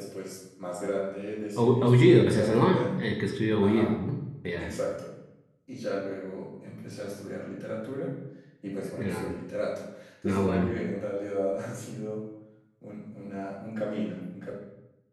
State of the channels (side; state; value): both; identical; correlation 1.00